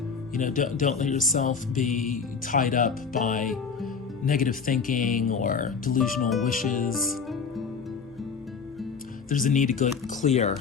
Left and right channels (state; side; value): quieter; right; 5.6 dB